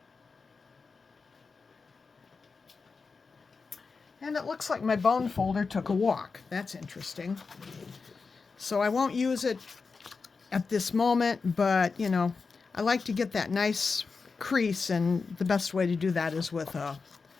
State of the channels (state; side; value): quieter; right; 4.7 dB